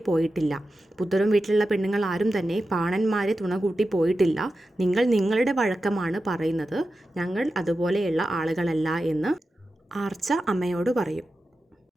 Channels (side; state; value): both; normal; correlation 0.92